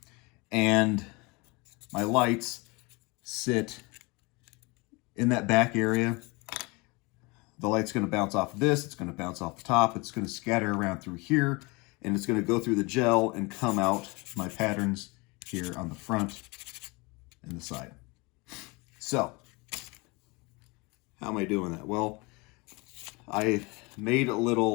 And my lights sit in that back area. The light's going to bounce off of this. It's going to bounce off the top. It's going to scatter around through here. And it's going to go through the gel and come out my patterns here on the front. and the side. So, how am I doing that? Well, I made a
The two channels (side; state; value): right; quieter; 26.5 dB